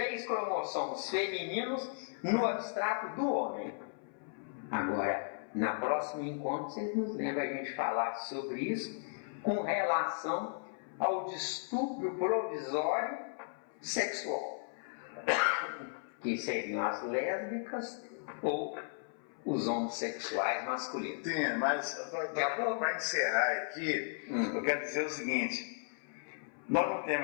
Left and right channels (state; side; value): silent; right; 54 dB below the other